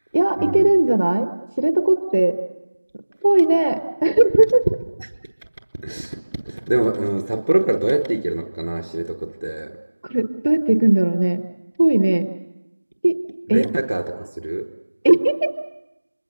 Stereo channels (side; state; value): both; inverted; correlation -1.00